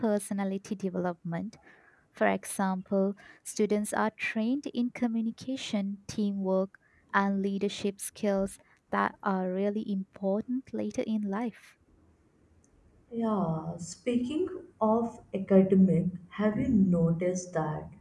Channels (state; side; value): identical; both; correlation 1.00